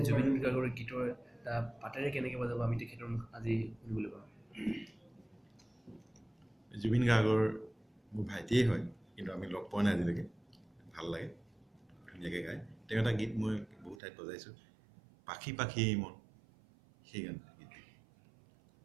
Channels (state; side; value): drops out; left; at 14.0 s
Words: গাৰ্গৰ গীতৰ এটা পাতেৰে কেনেকৈ বজাব আমি তেখেতৰ মুখ আজি শুনিবলৈ পাওঁ জুবিন গাৰ্গৰ মোৰ ভাইটিয়ে হয় কিন্তু আমি লগ পোৱা নাই আজিলৈকে ভাল লাগে ধুনীয়াকৈ গায় তেওঁ এটা গীত মই বহুত ঠাইত বজাইছোঁ পাখি পাখি মন সেই গান গীত